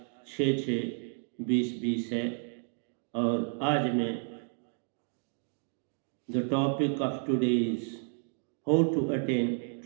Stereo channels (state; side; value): silent; left; 57 dB below the other